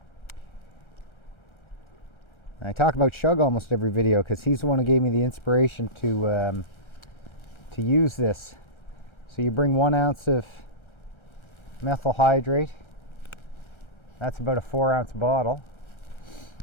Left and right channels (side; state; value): right; late; 1.4 ms